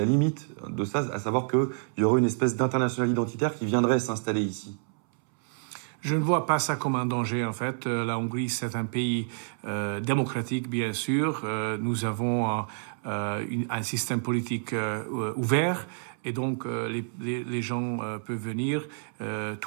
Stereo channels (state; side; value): silent; left; 59 dB below the other